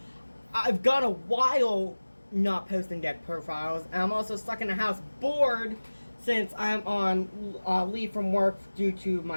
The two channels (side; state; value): both; inverted; correlation -1.00